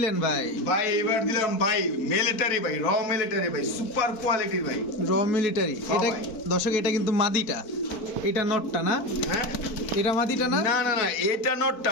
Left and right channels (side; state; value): right; late; 4.1 ms